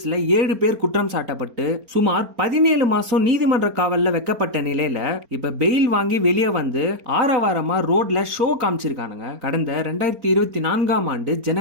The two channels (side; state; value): left; late; 4.3 ms